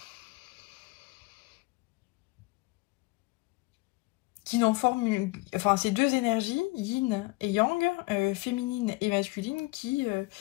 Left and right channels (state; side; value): quieter; right; 23.6 dB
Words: qui n'en forment, enfin ces deux énergies, yin et yang, féminine et masculine, qui